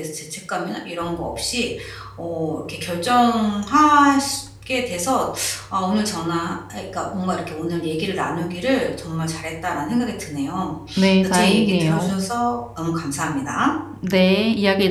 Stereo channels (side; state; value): both; identical; correlation 1.00